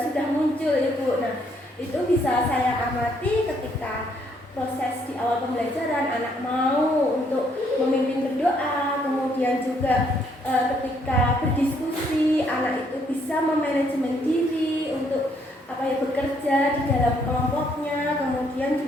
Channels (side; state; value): both; normal; correlation 0.69